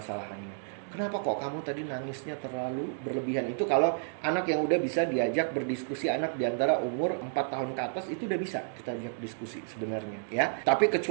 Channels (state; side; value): silent; left; digital silence